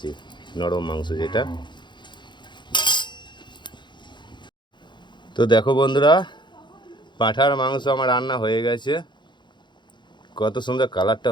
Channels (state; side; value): late; right; 0.22 ms